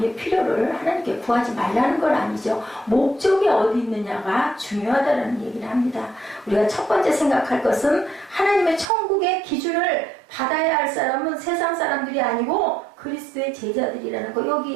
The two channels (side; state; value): left; drops out; at 8.8 s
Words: 필요를 하나님께 구하지 말라는 건 아니죠. 목적이 어디 있느냐가 중요하다는 얘기를 합니다. 우리가 첫 번째 생각할 것은 하나님의 천국의 기준을 받아야 할 사람은 세상 사람들이 아니고 그리스도의 제자들이라는 거.